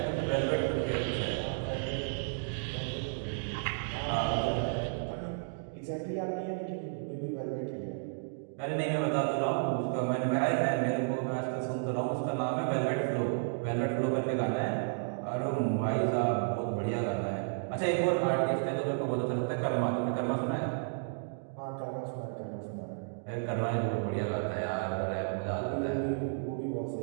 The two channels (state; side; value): silent; left; digital silence